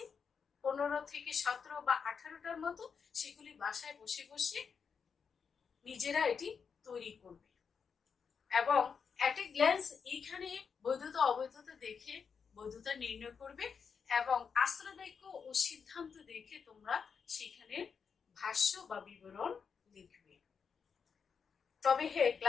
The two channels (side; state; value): right; quieter; 6.2 dB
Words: 15 থেকে 17 বা 18টার মতো। সেগুলি বাসায় বসে বসে নিজেরা এটি তৈরি করবে এবং অ্যাট এ গ্ল্যান্স এইখানে বৈধতা অবৈধতা দেখে বৈধতা নির্ণয় করবে এবং আশ্রয় বাক্য ও সিদ্ধান্ত দেখে তোমরা সেখানে ভাষ্য বা বিবরণ লিখবে। তবে হ্যাঁ,